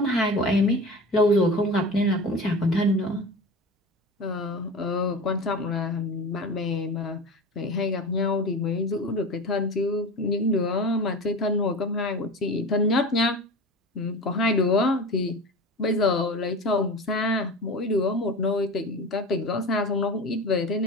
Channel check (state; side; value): normal; both; correlation 0.31